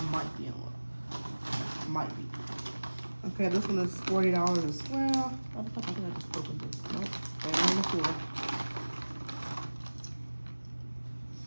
might be in one. Might be. Okay, this one is $40 as well. I think I just opened this. Nope, they're on the floor.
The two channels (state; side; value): inverted; both; correlation -1.00